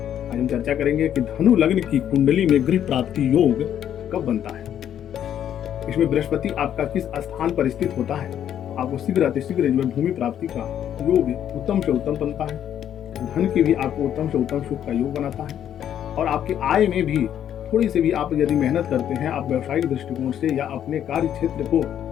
आज हम चर्चा करेंगे कि धनु लग्न की कुंडली में गृह प्राप्ति योग कब बनता है। इसमें बृहस्पति आपका किस स्थान पर स्थित होता है, आपको शीघ्र अतिशीघ्र जो है भूमि प्राप्ति का योग उत्तम से उत्तम बनता है। धन की भी आपको उत्तम से उत्तम सुख का योग बनाता है और आपकी आय में भी थोड़ी सी भी आप यदि मेहनत करते हैं, आप व्यवसायिक दृष्टिकोण से या अपने कार्य क्षेत्र को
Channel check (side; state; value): right; quieter; 10.1 dB